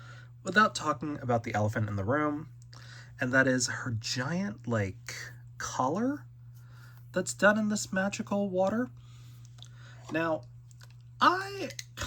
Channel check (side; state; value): both; identical; correlation 1.00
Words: without talking about the elephant in the room, and that is her giant collar that's done in this magical water. Now, I